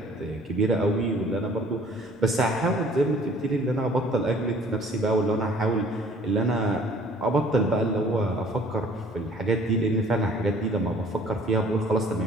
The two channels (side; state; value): both; normal; correlation 0.54